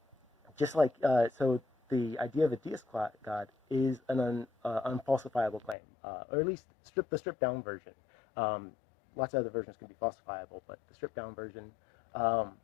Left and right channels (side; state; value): right; drops out; at 5.8 s